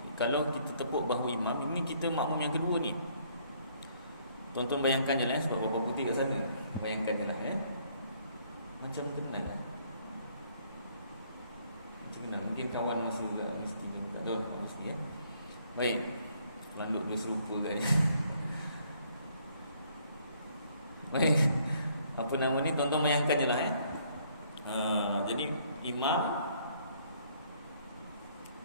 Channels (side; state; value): both; inverted; correlation -0.65